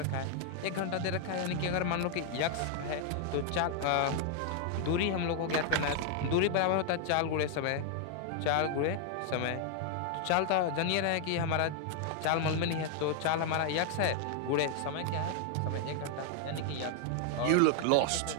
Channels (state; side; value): different; both; correlation 0.00